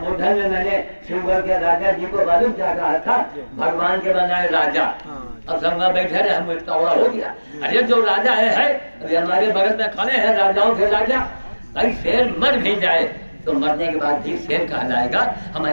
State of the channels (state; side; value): inverted; both; correlation -1.00